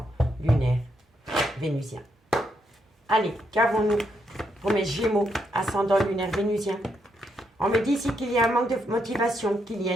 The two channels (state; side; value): normal; both; correlation 0.78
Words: lunaire vénusien. Allez, qu'avons-nous pour mes Gémeaux, ascendant lunaire vénusien? On me dit ici qu'il y a un manque de motivation, qu'il y a